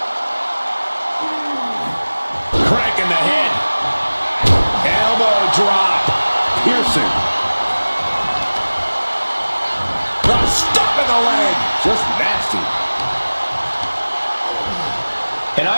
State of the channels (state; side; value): inverted; both; correlation -1.00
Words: Cranking the head. Elbow drop. Piercing. Stuck in the leg. Just nasty. An